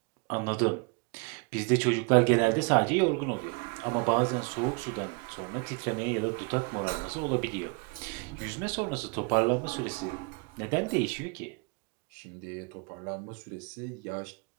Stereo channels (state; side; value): quieter; left; 32.8 dB